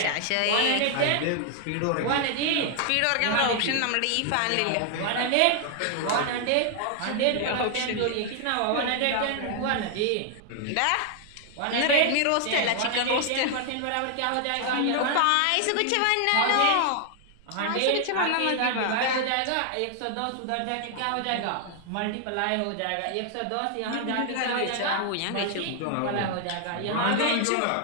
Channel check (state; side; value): different; both; correlation 0.00